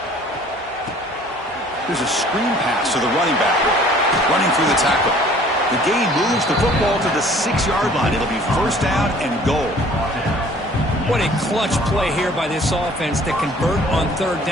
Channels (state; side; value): normal; both; correlation 0.53